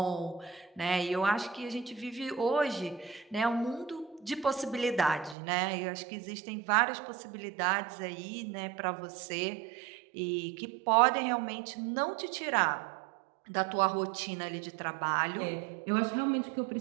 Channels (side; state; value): left; drops out; at 5.4 s